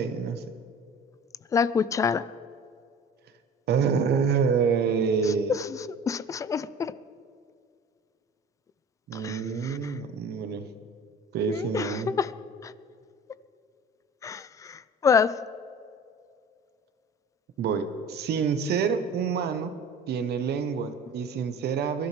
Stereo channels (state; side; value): normal; both; correlation 0.41